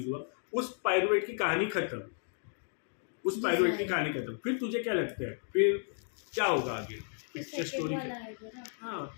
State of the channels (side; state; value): right; silent; 55 dB below the other